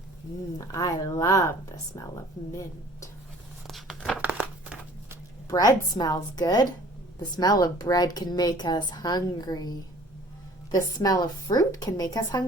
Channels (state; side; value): normal; both; correlation 0.51